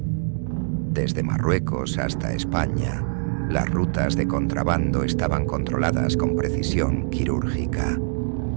Desde Marruecos hasta España, las rutas de contrabando estaban controladas con precisión quirúrgica.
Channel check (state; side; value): silent; left; digital silence